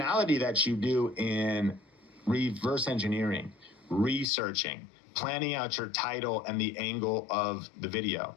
that you do in reverse engineering, researching, planning out your title and the angle of the video.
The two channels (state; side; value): drops out; right; at 4.2 s